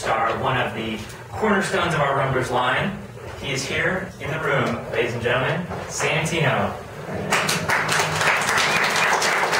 one of the cornerstones of our Rumblers line. He is here in the room, ladies and gentlemen, Santino.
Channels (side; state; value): both; identical; correlation 1.00